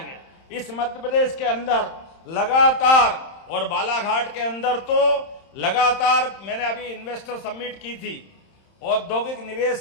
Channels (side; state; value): right; late; 31 ms